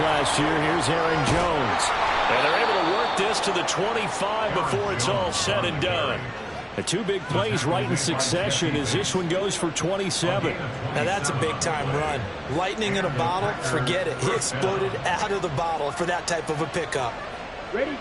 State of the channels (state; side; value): identical; both; correlation 1.00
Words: year. Here's Aaron Jones. And they're able to work this to the 25 before it's all said and done. The 2 big plays right in succession as this one goes for 27. Now that's a big-time run. Lightning in a bottle, forget it. He exploded out of the bottle for that type of a pickup. Ready,